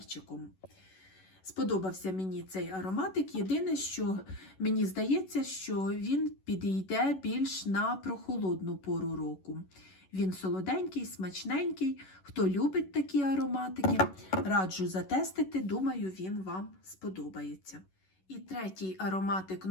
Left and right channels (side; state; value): right; late; 11 ms